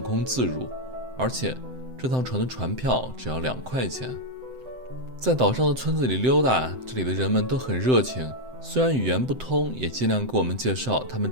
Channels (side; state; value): left; late; 7.8 ms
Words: 自如，而且这趟船的船票只要2块钱。在岛上的村子里溜达，这里的人们都很热情，虽然语言不通，也尽量给我们介绍他们